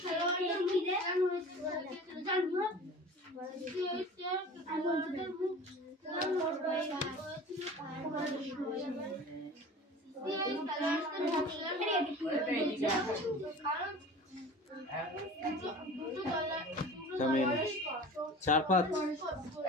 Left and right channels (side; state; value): both; normal; correlation 0.39